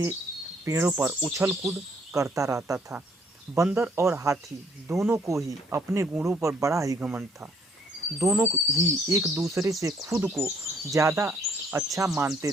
पेड़ों पर उछल कूद करता रहता था। बंदर और हाथी दोनों को ही अपने गुणों पर बड़ा ही घमंड था। दोनों ही एक दूसरे से खुद को ज़्यादा अच्छा मानते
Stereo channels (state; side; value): normal; both; correlation 0.65